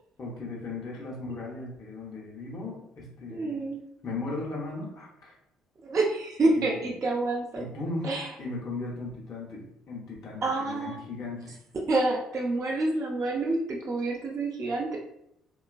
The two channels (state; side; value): normal; both; correlation 0.73